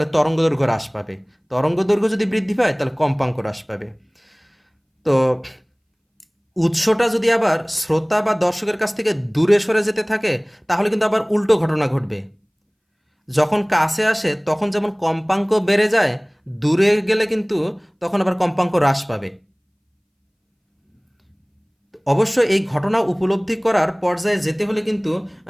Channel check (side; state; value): both; identical; correlation 1.00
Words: তরঙ্গ দৈর্ঘ্য হ্রাস পাবে, তরঙ্গ দৈর্ঘ্য যদি বৃদ্ধি পায় তাহলে কম্পাঙ্ক হ্রাস পাবে। তো উৎসটা যদি আবার শ্রোতা বা দর্শকের কাছ থেকে দূরে সরে যেতে থাকে তাহলে কিন্তু আবার উল্টো ঘটনা ঘটবে। যখন কাছে আসে তখন যেমন কম্পাঙ্ক বেড়ে যায়, দূরে গেলে কিন্তু তখন আবার কম্পাঙ্ক হ্রাস পাবে। অবশ্য এই ঘটনা উপলব্ধি করার পর্যায়ে যেতে হলে কিন্তু